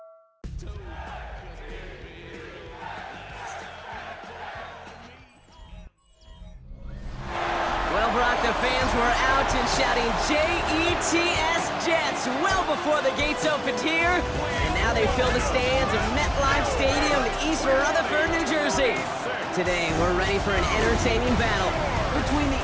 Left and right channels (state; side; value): identical; both; correlation 1.00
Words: Well, Brock, the fans were out and shouting J-E-T-S Jets well before the gates opened here. And now they fill the stands of MetLife Stadium in East Rutherford, New Jersey. Today, we're ready for an entertaining battle between the